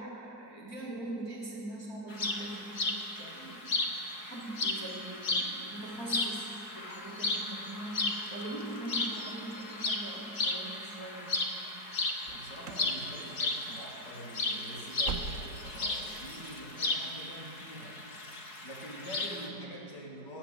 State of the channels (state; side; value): late; right; 4.7 ms